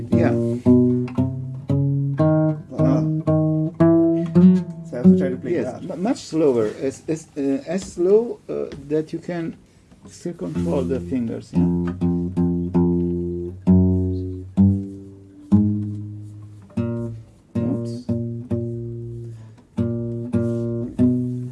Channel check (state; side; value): identical; both; correlation 1.00